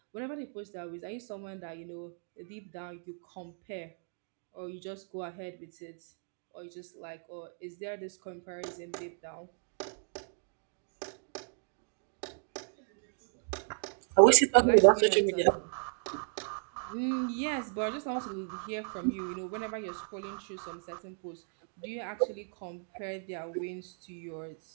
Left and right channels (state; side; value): silent; left; 55 dB below the other